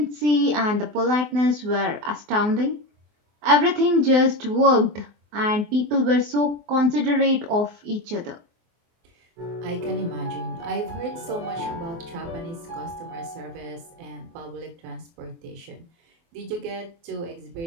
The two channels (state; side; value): late; left; 24 ms